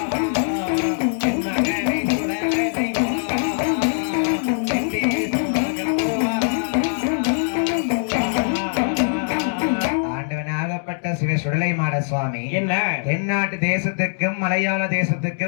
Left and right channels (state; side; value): silent; right; digital silence